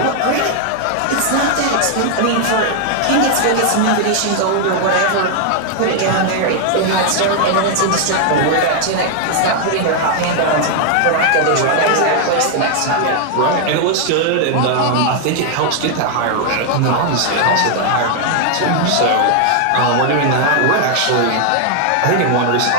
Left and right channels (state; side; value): different; both; correlation 0.00